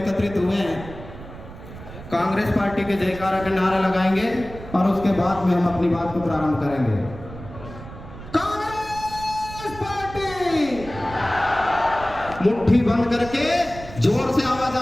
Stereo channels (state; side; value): noise; right; rumble, 14 dB below the sound